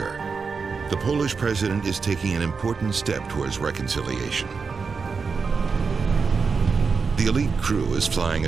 the Polish president is taking an important step towards reconciliation. The elite crew is flying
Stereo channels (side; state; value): left; quieter; 5.1 dB